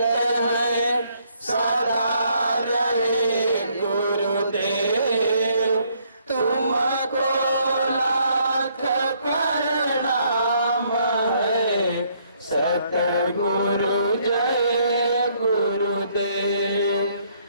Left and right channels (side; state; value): both; inverted; correlation -0.69